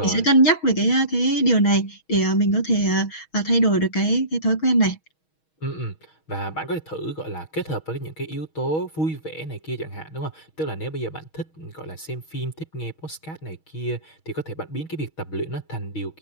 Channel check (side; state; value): right; late; 6.3 ms